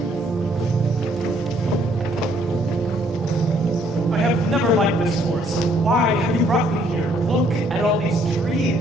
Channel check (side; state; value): both; normal; correlation 0.66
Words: I have never liked this forest. Why have you brought me here? Look at all these